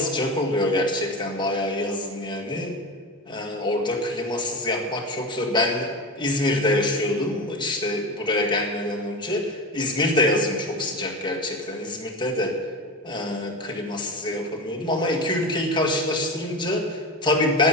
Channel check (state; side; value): normal; both; correlation 0.23